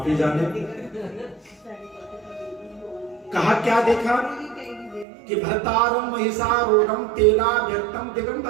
ही जाने। कहा क्या देखा कि भर्तारं मयिसारूढं तेलाव्यक्तं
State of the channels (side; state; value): left; drops out; at 5.1 s